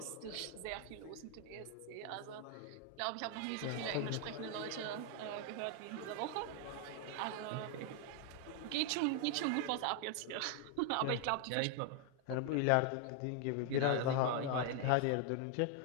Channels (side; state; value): both; different; correlation 0.00